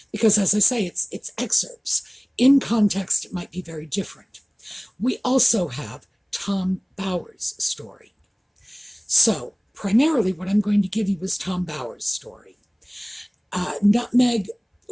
because, as I say, it's excerpts. In context, it might be very different. We also have Tom Bowers' story. So, primarily what I'm going to give you is Tom Bowers' story. Nutmeg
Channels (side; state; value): both; identical; correlation 1.00